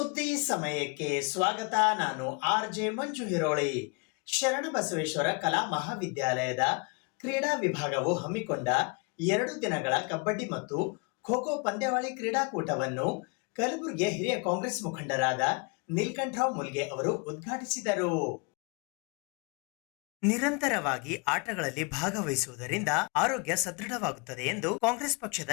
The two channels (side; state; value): right; quieter; 31.8 dB